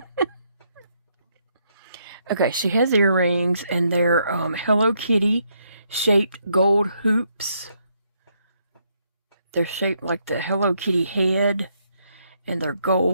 Okay, she has earrings and they're Hello Kitty shaped gold hoops. They're shaped like the Hello Kitty head and they're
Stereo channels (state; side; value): inverted; both; correlation -0.75